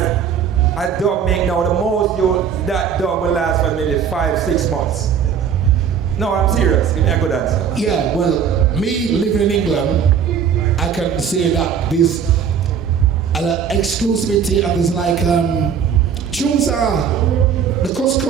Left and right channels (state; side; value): quieter; left; 7.6 dB